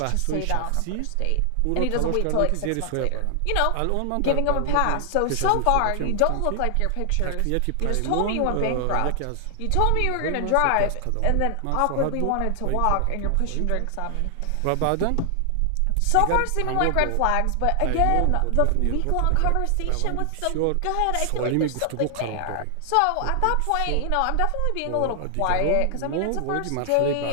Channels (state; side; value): different; both; correlation 0.00